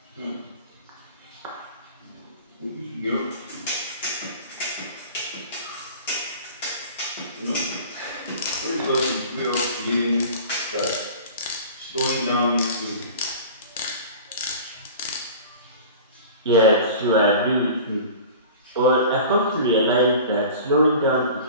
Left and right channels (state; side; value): inverted; both; correlation -0.39